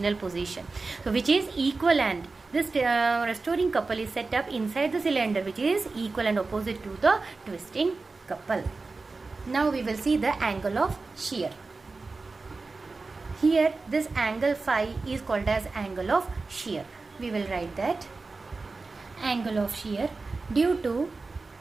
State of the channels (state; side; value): quieter; left; 3.8 dB